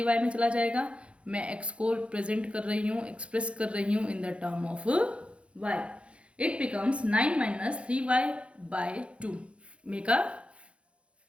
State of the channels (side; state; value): left; late; 0.060 ms